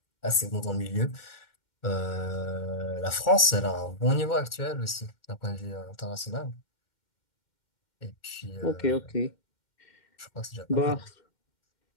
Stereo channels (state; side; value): late; right; 2.1 ms